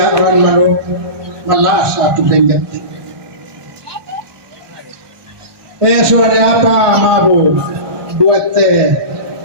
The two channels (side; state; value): left; late; 1.2 ms